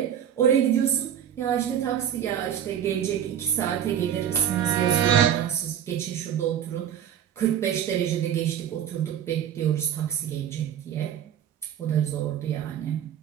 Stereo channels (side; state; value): left; quieter; 9.6 dB